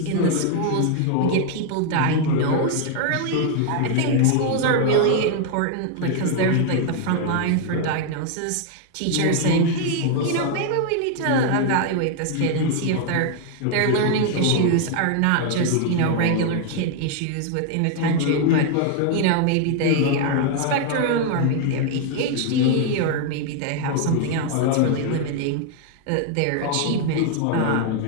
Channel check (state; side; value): different; both; correlation 0.00